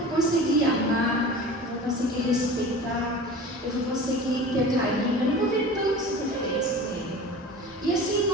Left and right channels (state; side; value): normal; both; correlation 0.37